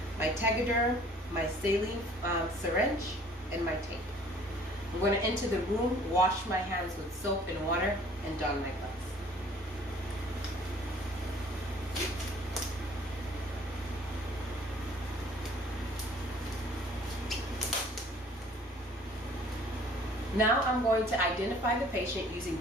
my Tegaderm, my saline syringe, and my tape. I'm going to enter the room, wash my hands with soap and water, and don my gloves. Now I'm going to identify the patient using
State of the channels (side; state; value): both; normal; correlation 0.54